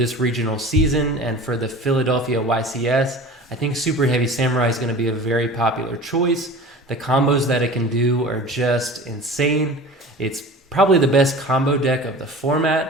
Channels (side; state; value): both; normal; correlation 0.38